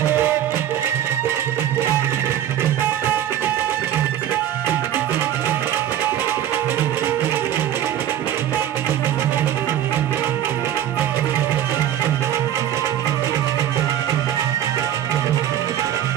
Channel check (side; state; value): left; quieter; 11.1 dB